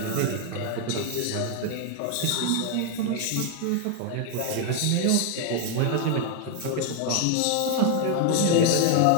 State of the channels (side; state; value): both; different; correlation 0.00